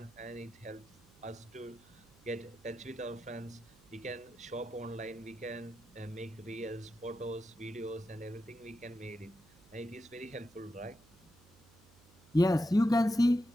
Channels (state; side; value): noise; right; hum, 26 dB below the sound